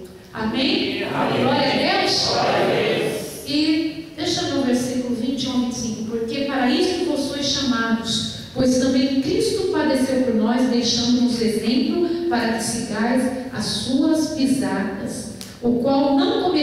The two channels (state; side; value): identical; both; correlation 1.00